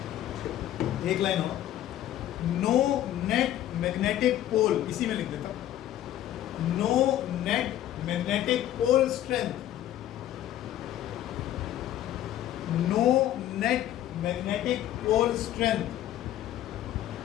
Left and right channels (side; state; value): right; quieter; 12.6 dB